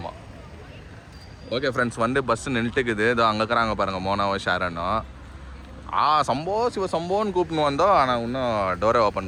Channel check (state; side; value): identical; both; correlation 1.00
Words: ஓகே ஃப்ரெண்ட்ஸ், வந்து பஸ் நின்றுட்டுக்குது. இதோ அங்கே இருக்கிறாங்க பாருங்க, மோனாவும் ஷாரனும். சம்போ சிவ சம்போன்னு கூப்பிட்டு வந்தோம், ஆனால் இன்னும் டோரை